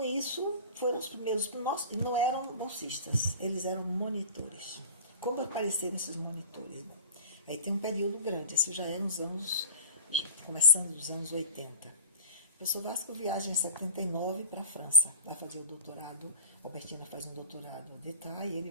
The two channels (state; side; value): inverted; both; correlation -0.34